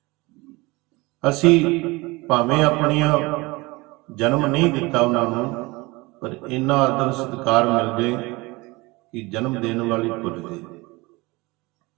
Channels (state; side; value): quieter; left; 23.4 dB